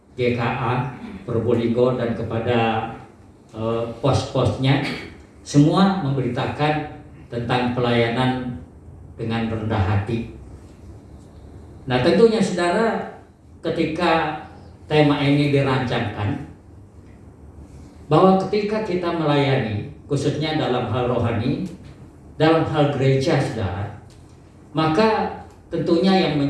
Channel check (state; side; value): identical; both; correlation 1.00